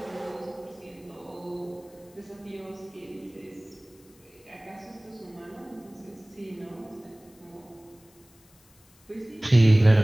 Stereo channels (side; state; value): left; noise; hiss, 29 dB below the sound